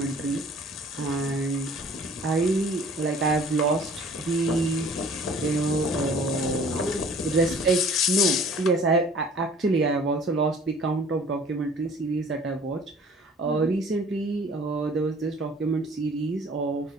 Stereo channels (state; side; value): normal; both; correlation 0.50